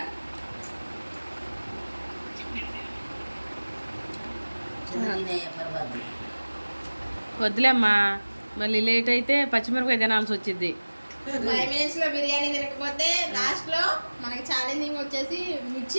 వద్దులేమ్మా, మళ్ళీ లేట్ అయితే పచ్చిమిరపకాయ తినాల్సి వచ్చింది. 5 minutes లో బిర్యానీ తినకపోతే లాస్ట్ లో మనకి ఛాలెంజింగ్ వచ్చేసి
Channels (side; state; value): both; inverted; correlation -1.00